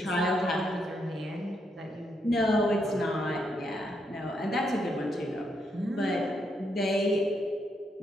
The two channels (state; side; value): normal; both; correlation 0.78